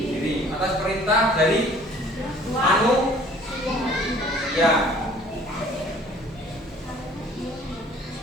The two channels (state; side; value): normal; both; correlation 0.53